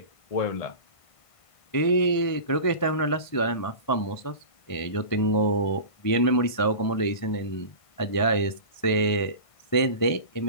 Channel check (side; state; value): right; late; 1.5 ms